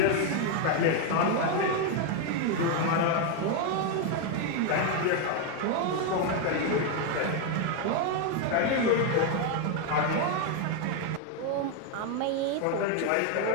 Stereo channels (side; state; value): both; different; correlation 0.01